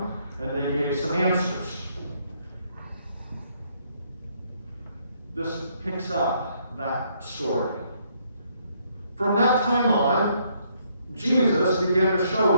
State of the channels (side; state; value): both; inverted; correlation -0.71